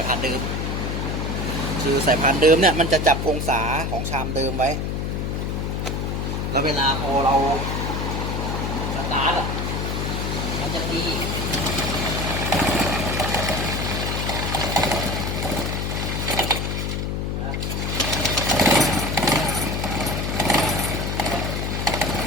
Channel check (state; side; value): noise; left; hum, 1 dB below the sound